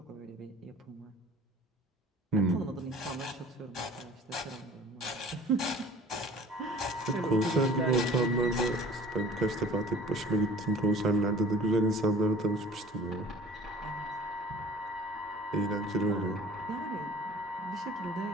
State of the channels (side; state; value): both; normal; correlation 0.46